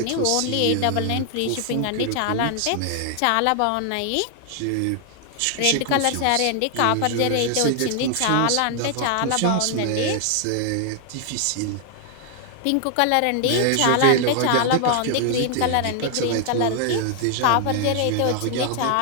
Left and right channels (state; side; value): different; both; correlation 0.00